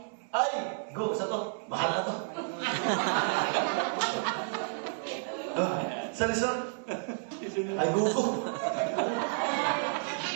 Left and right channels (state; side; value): silent; left; 57 dB below the other